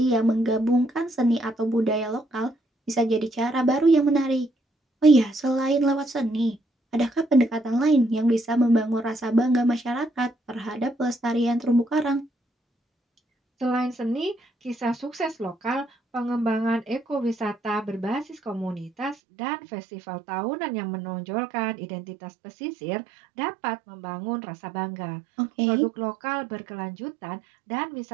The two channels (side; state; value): left; drops out; at 19.2 s